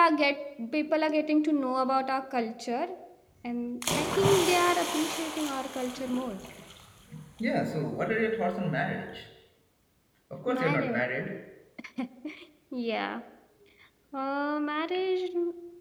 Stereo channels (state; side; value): identical; both; correlation 1.00